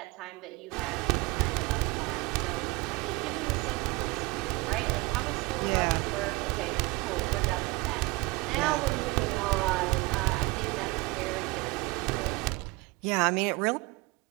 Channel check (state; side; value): quieter; left; 24.5 dB